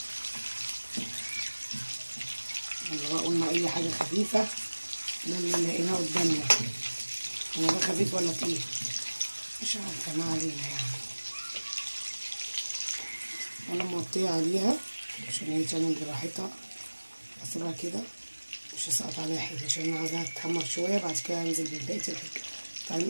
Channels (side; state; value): both; inverted; correlation -1.00